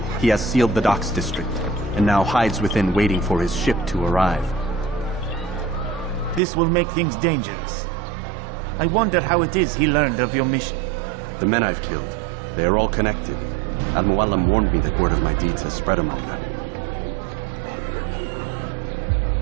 He has sealed the docks district, and now hides within waiting for his ship to arrive. This will make things dangerous. I wonder how it is he learned of your mission. The men I've killed, they are all connected. Al-Muallim warned me that word of my deeds has spread among them.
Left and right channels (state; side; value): drops out; left; at 6.4 s